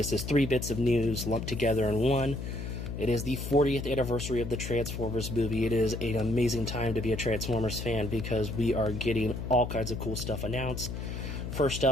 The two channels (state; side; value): noise; left; hum, 6 dB below the sound